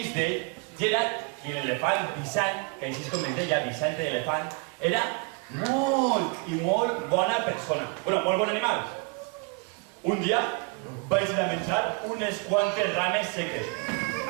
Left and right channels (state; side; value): quieter; left; 31.1 dB